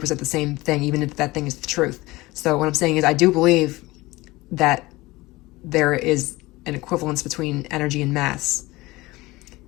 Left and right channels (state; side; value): quieter; right; 20.4 dB